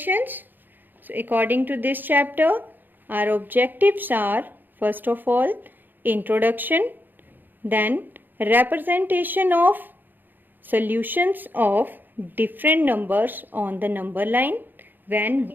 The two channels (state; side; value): late; left; 0.090 ms